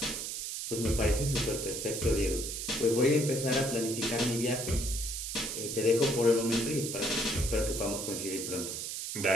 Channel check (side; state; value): right; noise; hiss, 5 dB below the sound